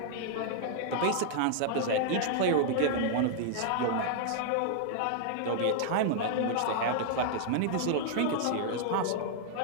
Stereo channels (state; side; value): different; both; correlation -0.01